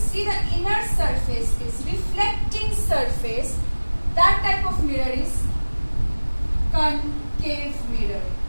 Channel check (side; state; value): both; inverted; correlation -1.00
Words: see, the inner surface is reflecting surface. That type of mirror is concave mirror.